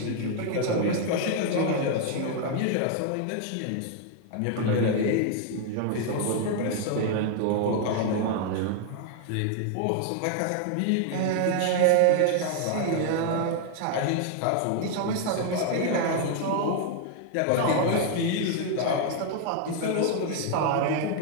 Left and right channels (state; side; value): different; both; correlation 0.00